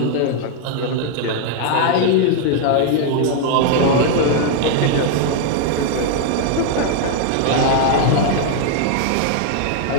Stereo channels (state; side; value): different; both; correlation 0.00